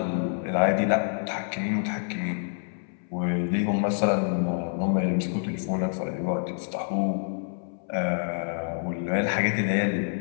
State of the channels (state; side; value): silent; right; 60 dB below the other